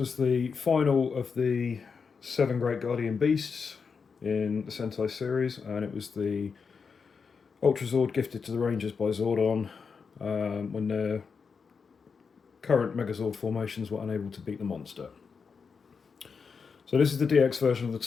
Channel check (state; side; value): quieter; right; 5.6 dB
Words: the final of the 7 Great Guardian Beasts in the Sentai series, and it was the Ultrazord gifted to the Rangers by Zordon when their current Megazord formations were unable to beat the monster. So this is the DX version of the